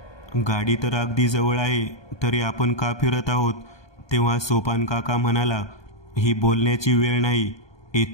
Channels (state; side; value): late; right; 1.2 ms